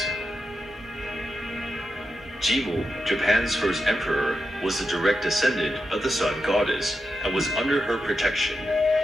Jimmu, Japan's first emperor, was the direct descendant of the sun goddess and was under her protection.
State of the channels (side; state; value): both; normal; correlation 0.88